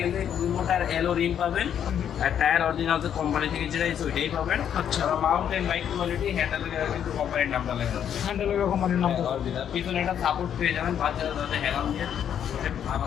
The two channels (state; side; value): quieter; right; 9.1 dB